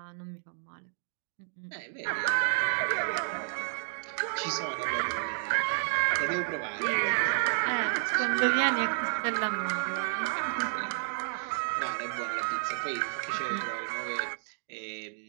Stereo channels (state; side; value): silent; left; digital silence